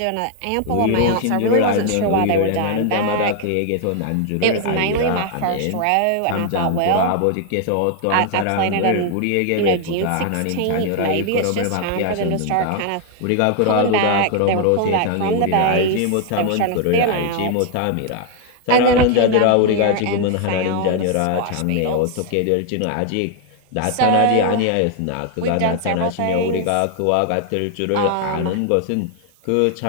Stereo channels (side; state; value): both; different; correlation 0.00